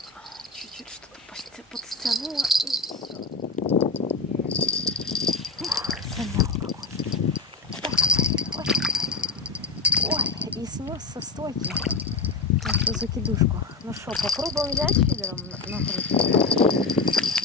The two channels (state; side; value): quieter; right; 4.2 dB